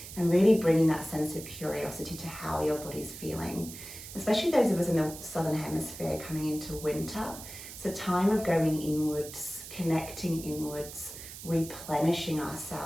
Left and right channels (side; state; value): right; noise; hiss, 12 dB below the sound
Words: and really bringing that sense of curiosity to how your body's feeling. Especially those of us in the southern hemisphere coming into winter, it's a time of going inwards, connecting inwards, replenishing